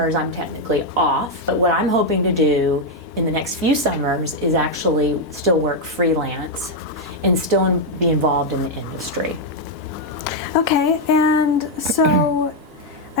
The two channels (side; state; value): both; normal; correlation 0.00